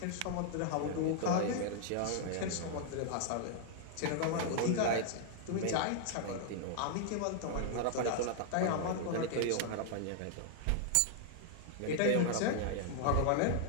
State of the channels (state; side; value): different; both; correlation -0.01